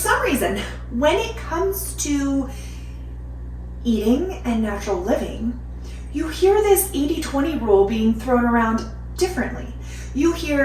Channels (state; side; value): identical; both; correlation 1.00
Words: reason, when it comes to eating and natural living, you hear this 80-20 rule being thrown around differently. You